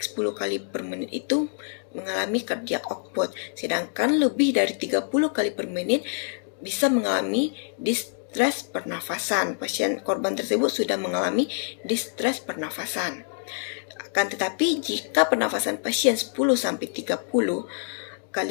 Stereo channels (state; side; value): silent; right; 61 dB below the other